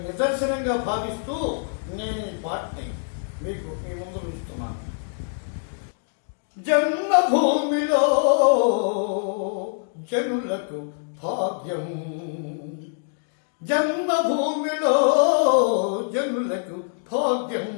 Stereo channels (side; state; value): right; silent; digital silence